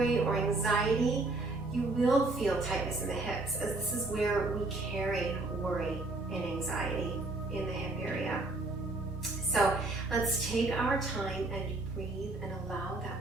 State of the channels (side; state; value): left; quieter; 3.0 dB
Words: or anxiety, you will feel tightness in the hips, as this is where we carry worry and anxiety, in the hip area. So let's take our time and breathe and allow